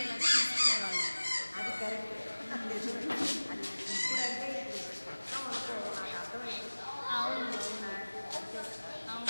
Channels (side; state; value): both; inverted; correlation -1.00